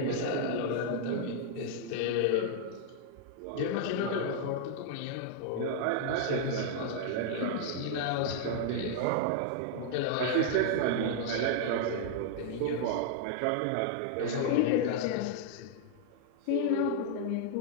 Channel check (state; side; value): different; both; correlation -0.01